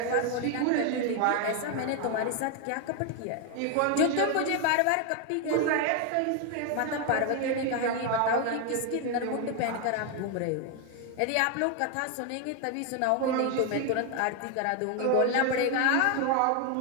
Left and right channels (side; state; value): both; different; correlation 0.01